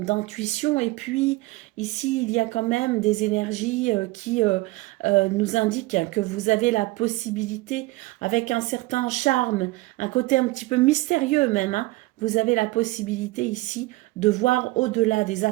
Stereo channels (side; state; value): left; quieter; 20.9 dB